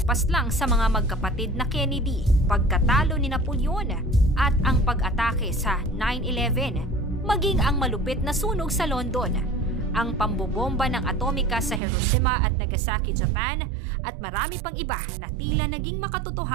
sa mga magkapatid na Kennedy, pagkatalo ni Napoleon at ang pag-atake sa 9/11, maging ang malupit na sunog sa London, ang pambobomba ng atomika sa Hiroshima at Nagasaki, Japan, at marami pang iba na tila naging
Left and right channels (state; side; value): drops out; left; at 11.8 s